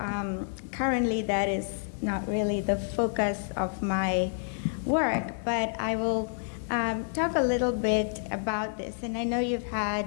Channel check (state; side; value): silent; right; digital silence